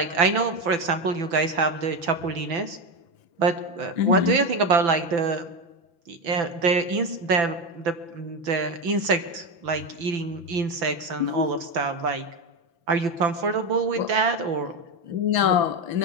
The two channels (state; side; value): late; left; 5.9 ms